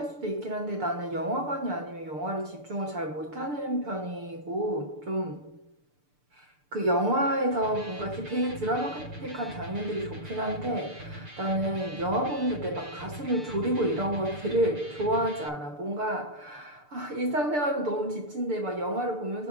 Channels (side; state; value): left; late; 6.8 ms